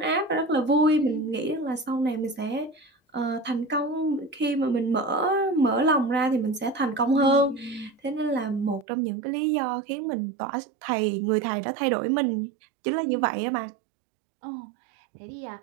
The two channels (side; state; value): left; drops out; at 8.8 s